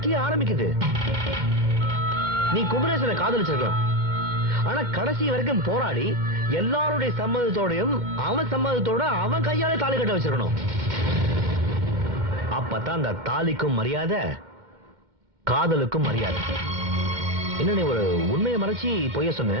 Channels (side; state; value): left; late; 2.1 ms